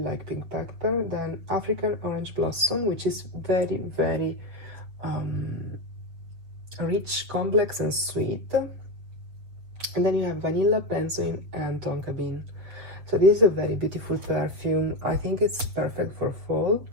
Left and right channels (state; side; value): late; left; 7.3 ms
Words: pink pepper. Then African orange blossom, which is very, very rich, complex, and sweet. And then you have vanilla, benzoin, and tonka bean. So this is a very beautiful perfume. I think it's perfect for fall.